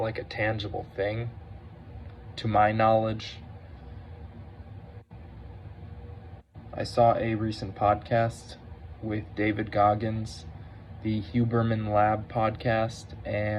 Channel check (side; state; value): both; identical; correlation 1.00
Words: a tangible thing, to my knowledge. I saw a recent podcast with David Goggins, the Huberman Lab podcast,